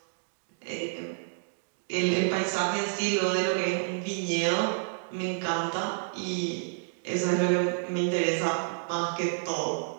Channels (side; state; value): left; silent; digital silence